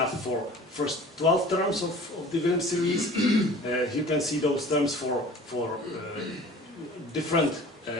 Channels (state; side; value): normal; both; correlation 0.44